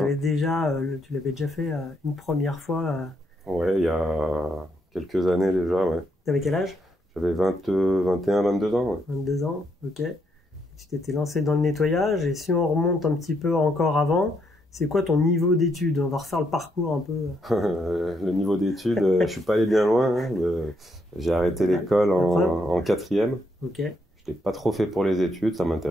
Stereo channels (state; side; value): normal; both; correlation 0.76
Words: déjà, tu l'avais déjà fait une première fois. Ouais, il y a quelques années déjà, ouais. T'avais quel âge? J'avais 21, 22 ans, ouais. 22 ans, ok. Tu t'étais lancé dans le nettoyage, et si on remonte un petit peu encore avant, c'est quoi ton niveau d'études? On va refaire le parcours un peu. Le niveau d'études, je suis pas allé bien loin, hein. J'ai arrêté l'école en 4e. Ok. Je n'étais pas trop fait pour les études, ça